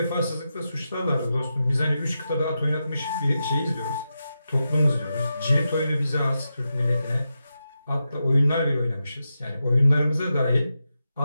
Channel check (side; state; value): both; inverted; correlation -0.89